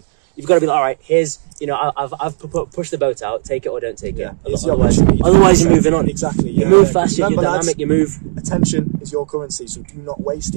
You've got to be like, all right, here's, you know, I've pushed the boat out. Take it or don't take Yeah. it. It's your Otherwise, opportunity. otherwise you're moving on. Exactly. You yeah, move yeah. fast. You're Remember, dynamic. lads, You move. attention is your currency, so do not waste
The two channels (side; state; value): left; silent; digital silence